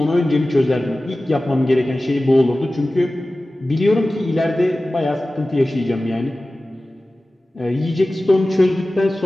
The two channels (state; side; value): normal; both; correlation 0.96